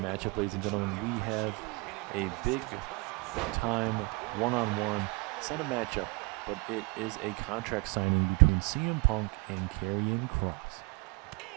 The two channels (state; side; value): quieter; left; 27.3 dB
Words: ladies and gentlemen, we have a big time one-on-one. It's not a matchup, but it is a contract signing between CM Punk and Karrion Kross.